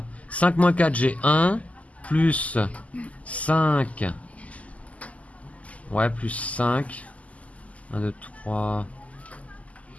5 moins 4, j'ai 1. Plus 5. Ouais, plus 5. 1, 2, 3,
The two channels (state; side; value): late; right; 0.070 ms